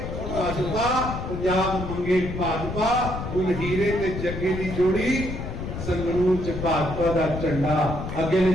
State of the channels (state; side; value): noise; left; rumble, 6 dB below the sound